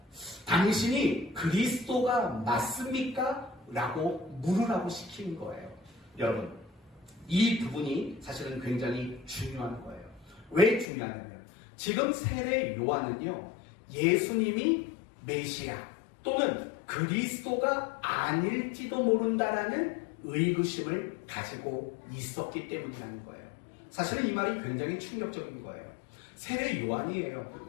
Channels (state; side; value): drops out; right; at 10.9 s